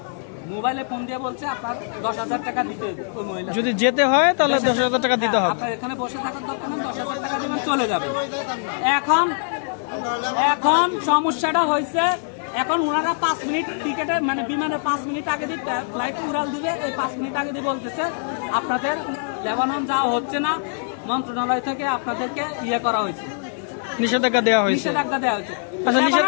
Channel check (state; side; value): silent; right; digital silence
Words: মোবাইলে ফোন দিয়ে বলছে আপনার 10,000 টাকা দিতে হবে। ওই মহিলা যদি যেতে হয় তাহলে 10,000 টাকা দিতে হবে। আপনার এখানে বসে থাকার দরকার নেই, 10,000 টাকা দিবেন, চলে যাবে। এখন সমস্যাটা হয়েছে, এখন ওনারা 5 মিনিট টিকেটে মানে বিমানে 5 মিনিট আগে দিয়ে ফ্লাইট উড়াল দিবে। এই 5 মিনিট আগে দিয়ে বলতেছে আপনাদের লেবানন যাওয়া হচ্ছে না, মন্ত্রণালয় থেকে আপনাদেরকে করা হয়েছে, নিষেধাজ্ঞা দেওয়া হয়েছে। আচ্ছা,